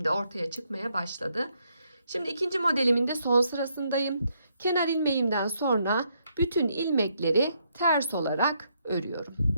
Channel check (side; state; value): both; inverted; correlation -0.75